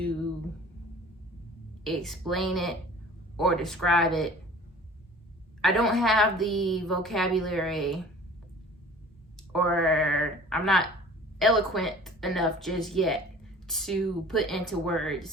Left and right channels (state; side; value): normal; both; correlation 0.46